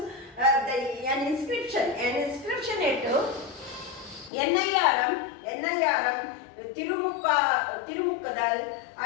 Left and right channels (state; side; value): drops out; right; at 4.3 s